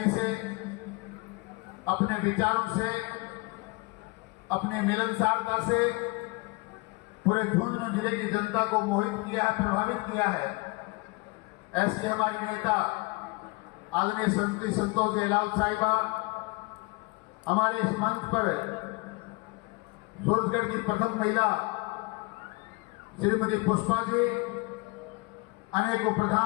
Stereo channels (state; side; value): quieter; right; 25.8 dB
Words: से, अपने विचारों से, अपने मिलनसारता से पूरे झुंझुनू जिले की जनता को मोहित किया है, प्रभावित किया है। ऐसी हमारी नेता आदरणीय श्रीमती संतोष जयलाल साहिबा हमारे इस मंच पर सूरजगढ़ की प्रथम महिला श्रीमती पुष्पा जी, अनेकों